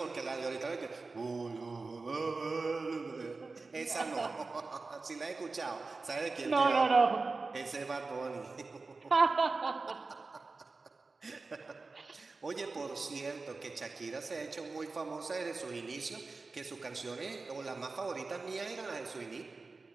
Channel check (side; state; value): left; quieter; 3.9 dB